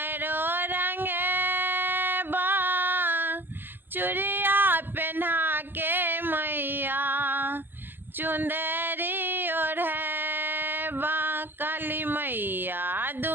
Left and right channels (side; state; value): left; late; 0.094 ms